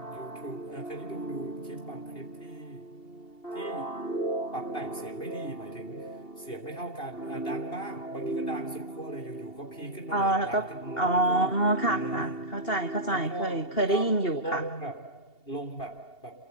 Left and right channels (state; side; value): late; right; 2.8 ms